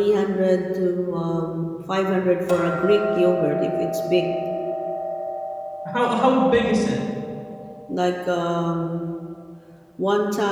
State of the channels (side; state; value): both; identical; correlation 1.00